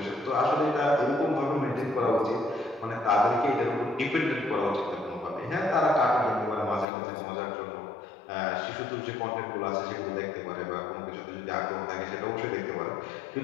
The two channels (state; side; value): drops out; right; at 6.9 s